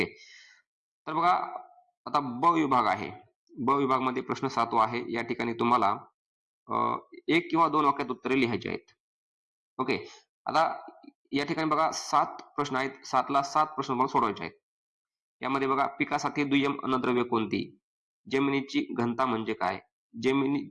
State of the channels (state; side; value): identical; both; correlation 1.00